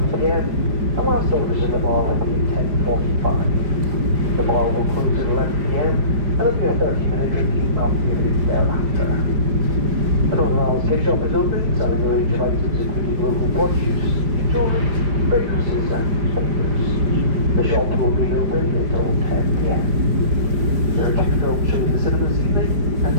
p.m. and last orders in the bar will be at 10:45. The bar will close at 11 p.m. and there'll be a 30-minute drinking opportunity thereafter. An overall gift shop is open, selling a range of items including local produce, jewellery, fragrances and flavors. The shop will be open until 10 p.m. There are 2 films showing the cinema this evening, and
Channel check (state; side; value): late; left; 5.0 ms